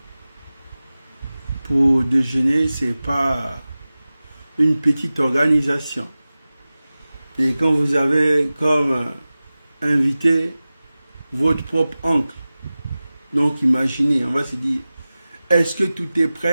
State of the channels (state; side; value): inverted; both; correlation -0.97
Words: pour déjeuner, c'est pas une petite organisation. Et quand vous avez comme invité votre propre oncle, donc imaginez, on va se dire, est-ce que tout est